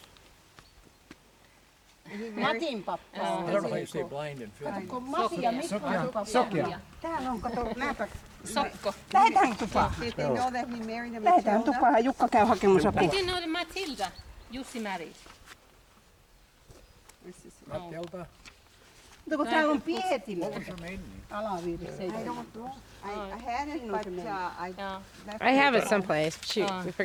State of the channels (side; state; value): both; identical; correlation 1.00